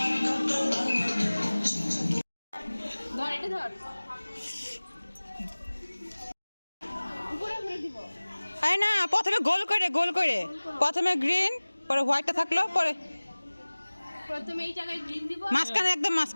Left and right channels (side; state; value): both; inverted; correlation -1.00